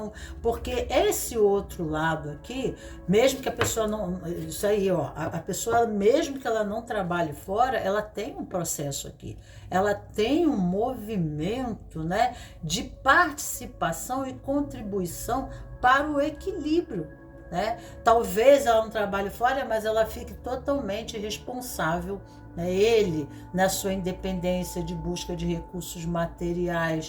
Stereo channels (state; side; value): identical; both; correlation 1.00